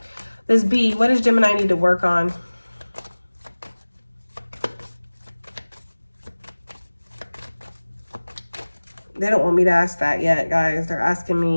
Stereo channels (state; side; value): inverted; both; correlation -1.00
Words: This B, what does Gemini need to work on? They don't want me to ask that yet, guys. They're asking